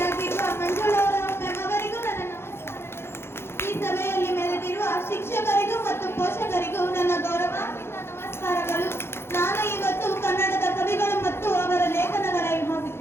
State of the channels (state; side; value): late; right; 0.12 ms